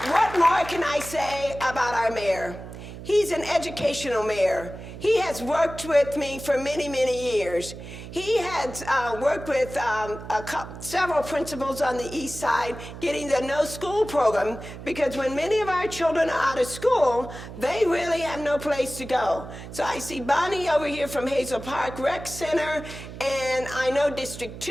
What more can I say about our mayor? He's an educational mayor. He has worked with me for many, many years. He has worked with several principals on the east side getting the no school program, because when many of our children are out of school, they really have no place to go. So I see Bonnie over here from Hazel Park Rec Center, and I know District 2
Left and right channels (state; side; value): noise; right; hum, 12 dB below the sound